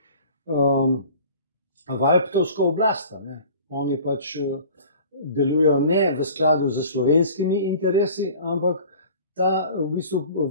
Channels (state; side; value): inverted; both; correlation -0.45